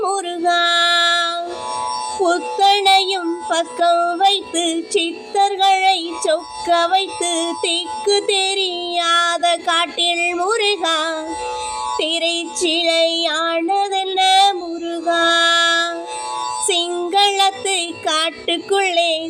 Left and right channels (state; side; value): identical; both; correlation 1.00